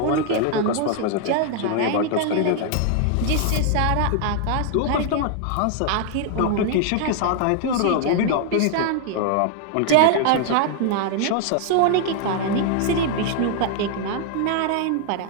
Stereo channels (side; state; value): both; different; correlation 0.00